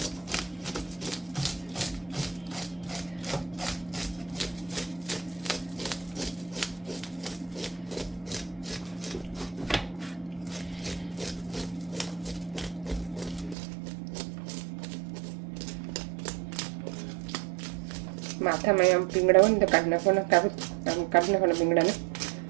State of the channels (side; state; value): left; drops out; at 13.6 s